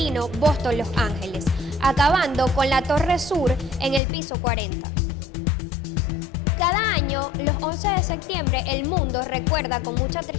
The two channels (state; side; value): drops out; right; at 4.0 s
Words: Boston-Los Ángeles, acabando con la Torre Sur en el piso 40. Cada año, los 11 de septiembre, el mundo recuerda con mucha